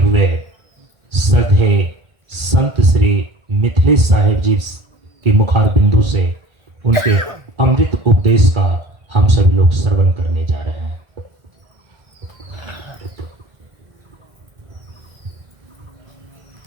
श्रद्धेय संत श्री मिथिलेश साहेब जी के मुखार बिंदु से उनके अमृत उपदेश का हम सभी लोग श्रवण करने जा रहे हैं।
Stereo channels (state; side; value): late; left; 1.8 ms